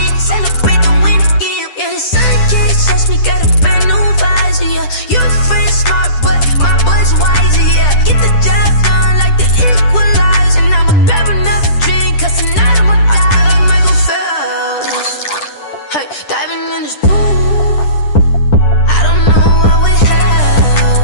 Celebrate the win again. Yeah, the sun can't touch me. Got a brand new visor. Yeah, you're friend smart, but my boy's wiser. Yeah, get the job done like the equalizer. And I'ma grab another drink, cause tonight I'ma die like Michael Phelps. Hey, diving in this pool. I don't know what we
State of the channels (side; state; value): right; late; 10 ms